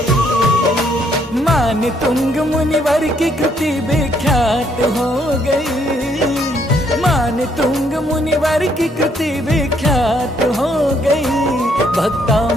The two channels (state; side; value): normal; both; correlation 0.70